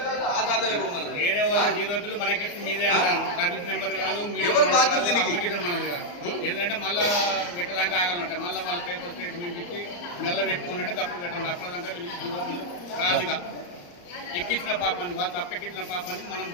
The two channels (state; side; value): late; right; 34 ms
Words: వేరే వాళ్ళ 0 బిల్లు మనకిచ్చి మీదే అంటాను సర్వీస్ నెంబర్ కాదు అప్లికేషన్ మనది కాదు ఏంటంటే మళ్ళీ పెట్టడానికి ఆగాలంట మళ్ళీ వాళ్ళ పేపర్ స్టేట్మెంట్ ఇచ్చి నెల పెట్టుకున్నట్టే తప్పుడు పెట్టండి అప్పటిదాకా వీళ్ళకి 0 బిల్లు రాదుగా ఎక్కించిన పాపానికి వాళ్ళు తప్పెక్కించిన పాపానికి మనం